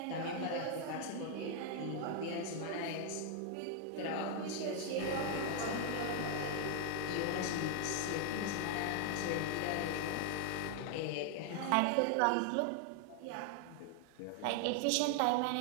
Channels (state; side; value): different; both; correlation 0.00